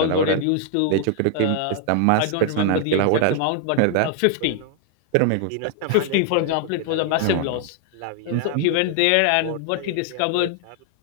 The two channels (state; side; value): different; both; correlation 0.00